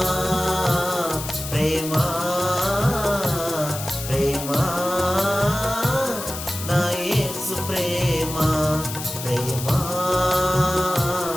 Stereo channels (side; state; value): left; noise; hiss, 8 dB below the sound